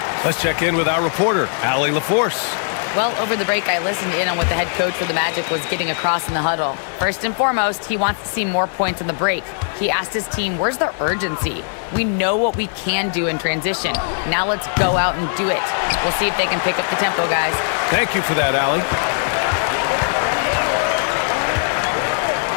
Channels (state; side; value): silent; right; digital silence